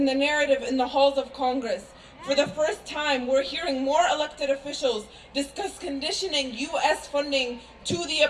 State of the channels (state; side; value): identical; both; correlation 1.00